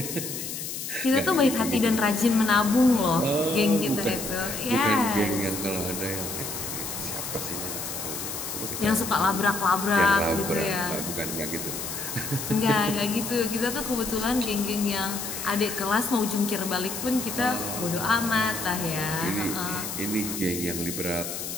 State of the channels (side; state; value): left; noise; hiss, 6 dB below the sound